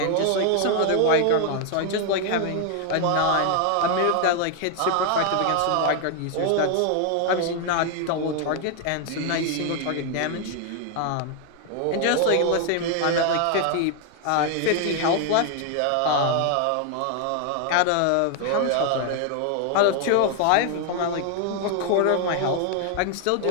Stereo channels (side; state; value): both; different; correlation 0.00